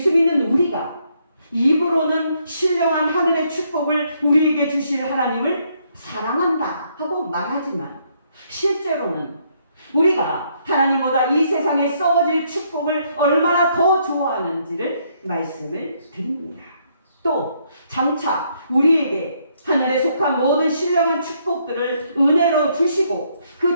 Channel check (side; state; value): both; inverted; correlation -0.71